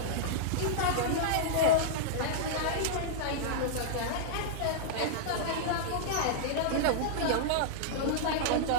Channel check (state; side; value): different; both; correlation -0.02